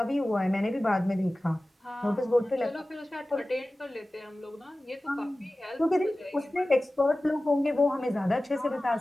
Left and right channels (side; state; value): both; normal; correlation 0.96